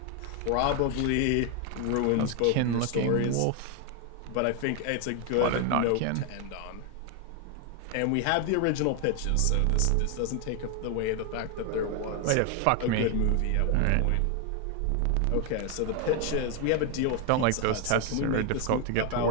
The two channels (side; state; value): both; different; correlation 0.01